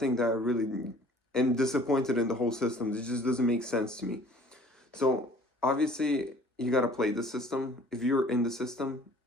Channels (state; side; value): normal; both; correlation 0.51